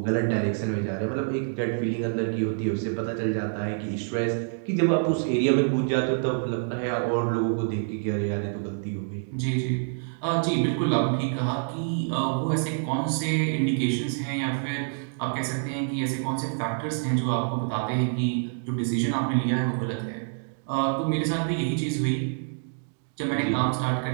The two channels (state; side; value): silent; left; digital silence